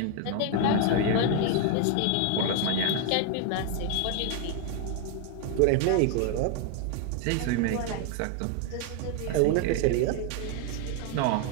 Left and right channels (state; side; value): different; both; correlation 0.00